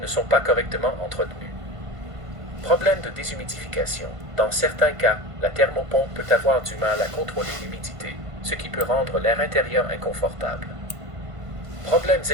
sont pas correctement entretenues. Problème de déshumidification. Dans certains cas, la thermopompe peut avoir du mal à contrôler l'humidité, ce qui peut rendre l'air intérieur inconfortable. Problèmes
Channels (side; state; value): left; late; 1.5 ms